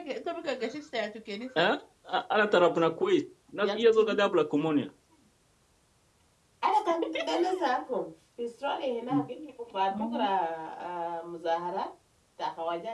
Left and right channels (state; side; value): identical; both; correlation 1.00